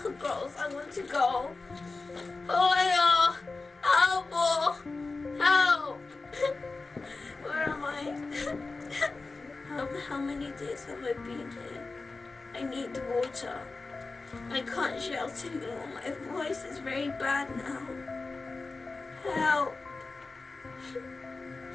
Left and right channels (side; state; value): right; quieter; 3.7 dB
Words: Gross, I want to go. Oh yeah, help! Where am I? How many days have I been here? I need water. I can't shout anymore. My voice is very bad now. Help!